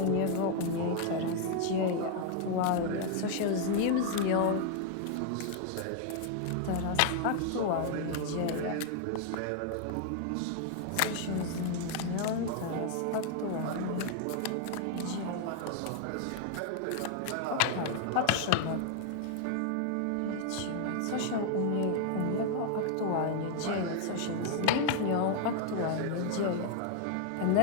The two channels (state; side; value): different; both; correlation 0.00